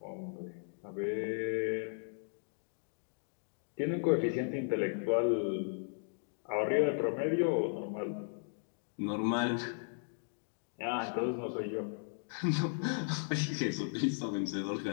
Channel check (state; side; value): silent; right; digital silence